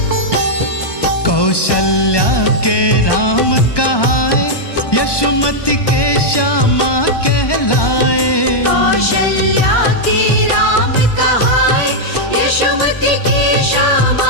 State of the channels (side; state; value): right; late; 1.2 ms